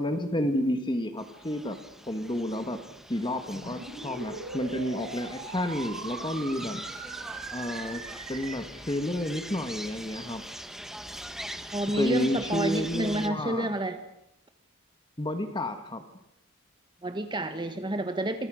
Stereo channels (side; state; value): both; normal; correlation 0.67